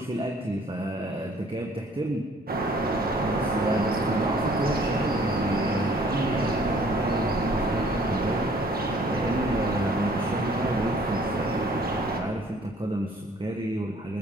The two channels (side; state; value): both; normal; correlation 0.57